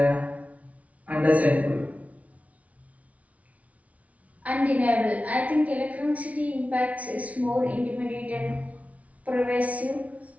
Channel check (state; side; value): late; left; 0.067 ms